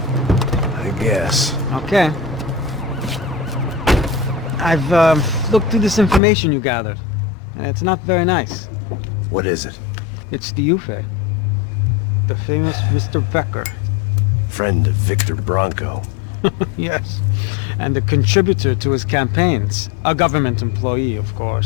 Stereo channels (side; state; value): right; drops out; at 6.2 s